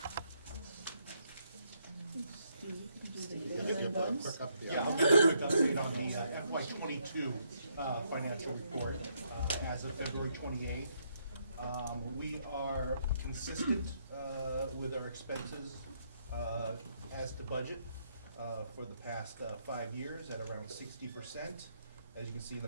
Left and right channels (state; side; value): inverted; both; correlation -0.74